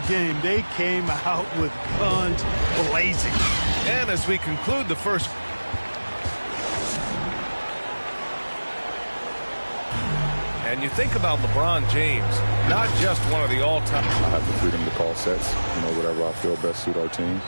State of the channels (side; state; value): both; inverted; correlation -1.00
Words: game. They came out with guns blazing. And as we conclude the first, and you think about LeBron James, not just one of the all-time. I have the freedom to call sets, whatever I feel best suit our team.